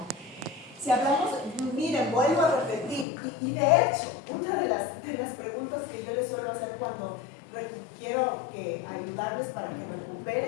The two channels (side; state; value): right; drops out; at 3.1 s